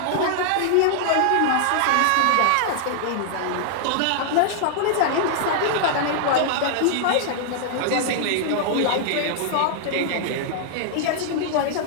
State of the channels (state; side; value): different; both; correlation -0.01